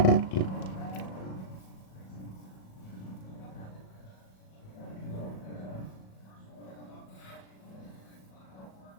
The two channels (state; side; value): late; right; 37 ms